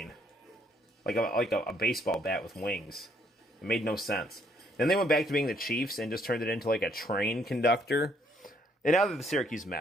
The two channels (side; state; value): both; normal; correlation 0.68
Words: like a baseball bat with wings. It made no sense. Then they went back to being the Chiefs and just turned it into like a train conductor. And now they're the Syracuse